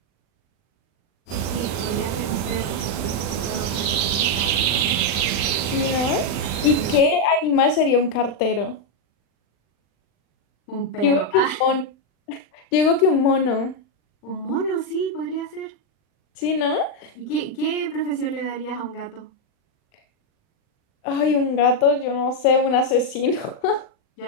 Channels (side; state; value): right; late; 39 ms